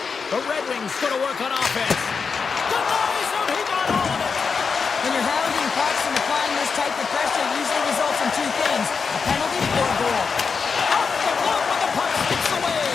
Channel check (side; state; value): right; quieter; 5.4 dB